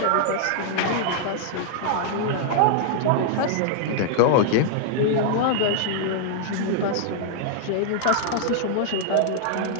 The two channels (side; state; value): both; different; correlation 0.00